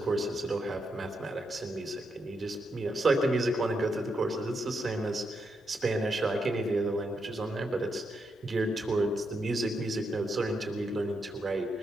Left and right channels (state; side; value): normal; both; correlation 0.82